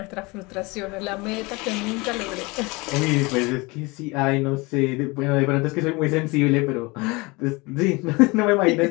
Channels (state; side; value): quieter; right; 25.2 dB